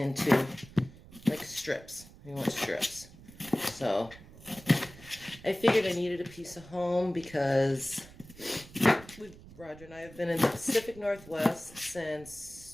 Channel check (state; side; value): noise; right; rumble, 19 dB below the sound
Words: like strips. We want strips. So I figured I needed a piece of home because Roger and I have been in the Pacific Northwest